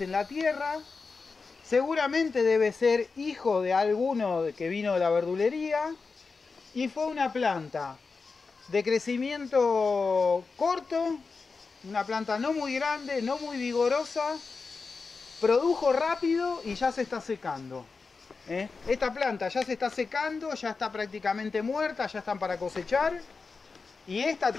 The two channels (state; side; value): quieter; right; 4.5 dB